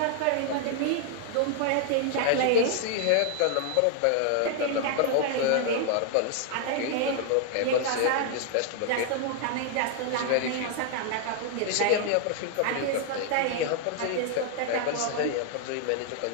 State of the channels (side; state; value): both; different; correlation 0.00